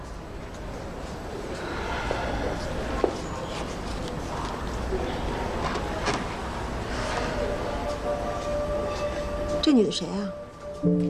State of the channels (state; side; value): identical; both; correlation 1.00